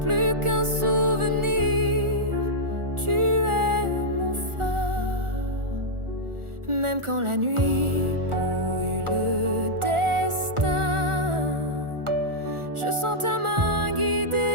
plus qu'un souvenir, tu es mon phare. Même quand la nuit brouille le destin, je sens ta main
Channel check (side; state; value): left; late; 1.4 ms